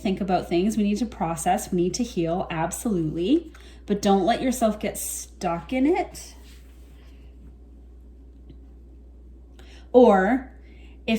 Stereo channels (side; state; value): both; identical; correlation 1.00